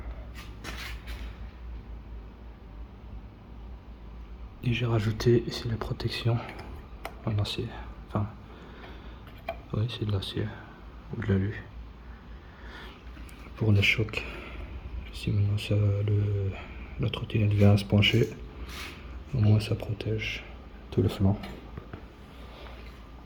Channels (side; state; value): both; identical; correlation 1.00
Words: Et j'ai rajouté ici la protection en acier. Enfin, oui, c'est de l'acier ou de l'alu. Pour le choc. Si maintenant la trottinette vient à se pencher, au moins ça protège tout le flanc.